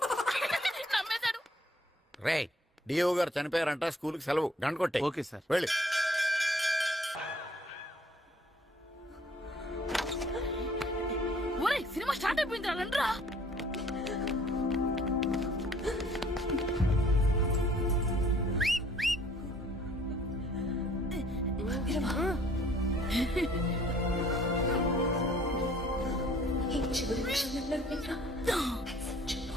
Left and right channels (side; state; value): both; normal; correlation 0.58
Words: నమ్మేశాడు. రే, డిఇఓ గారు చనిపోయారంట, స్కూల్ కి సెలవు, గంట కొట్టే. Okay sir. వెళ్ళి. ఒరే, సినిమా స్టార్ట్ అయిపోయింది రండ్రా.